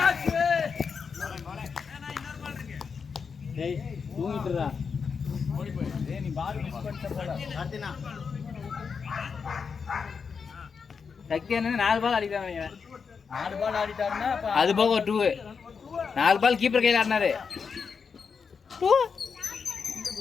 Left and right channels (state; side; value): quieter; right; 5.8 dB